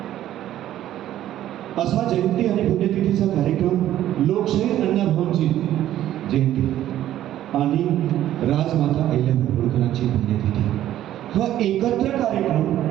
असा जयंती आणि पुण्यतिथीचा कार्यक्रम लोकशाहीर अण्णाभाऊंची जयंती आणि राजमाता अहिल्याबाई होळकरांची पुण्यतिथी हा एकत्र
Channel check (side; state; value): left; quieter; 12.6 dB